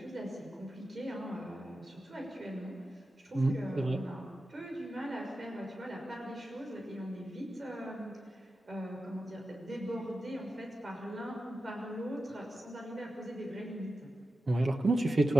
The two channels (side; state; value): both; normal; correlation 0.92